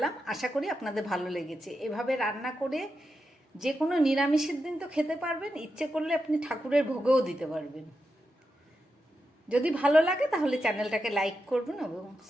আশা করি আপনাদের ভালো লেগেছে। এভাবে রান্না করে যে কোনো নিরামিষের দিন তো খেতে পারবেন, ইচ্ছে করলে আপনি ঠাকুরের ভোগেও দিতে পারবেন। যদি ভালো লাগে তাহলে চ্যানেলটাকে লাইক করবেন এবং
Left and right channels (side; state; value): both; normal; correlation 0.88